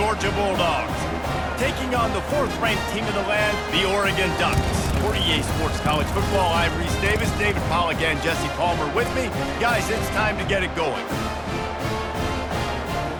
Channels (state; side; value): identical; both; correlation 1.00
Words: Bulldogs, taking on the 4th-ranked team in the land, the Oregon Ducks. For EA Sports College Football, I'm Reese Davis, David Pollack, and Jesse Palmer with me. Guys, it's time to get it going.